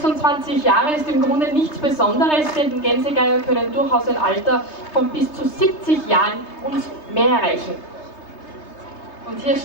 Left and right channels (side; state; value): right; late; 3.3 ms